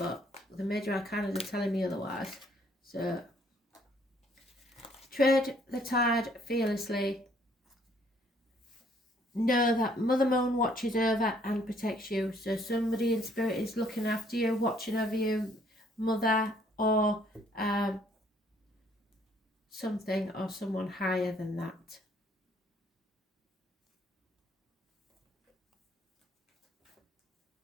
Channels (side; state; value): both; normal; correlation 0.64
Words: the major arcanas are telling me otherwise. So tread the tide fearlessly. know that Mother Moon watches over and protects you. So somebody in spirit is looking after you, watching over you, Mother, or something or someone higher than that.